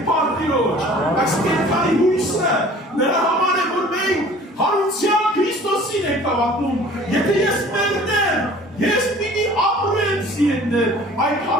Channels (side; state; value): both; normal; correlation 0.48